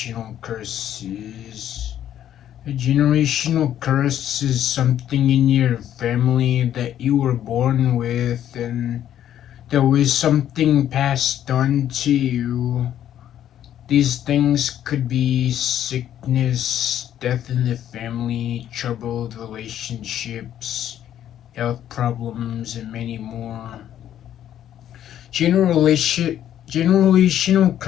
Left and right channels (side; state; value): right; quieter; 10.9 dB